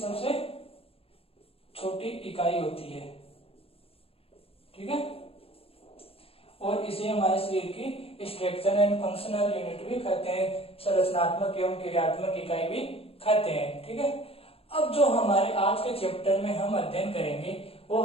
छोटी इकाई होती है। ठीक है, और इसे हमारे शरीर की स्ट्रक्चर एंड फंक्शनल यूनिट भी कहते हैं, संरचनात्मक एवं क्रियात्मक इकाई भी कहते हैं। ठीक है, अब जो हमारे आज के चैप्टर में हम अध्ययन करेंगे वो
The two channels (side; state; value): right; late; 0.28 ms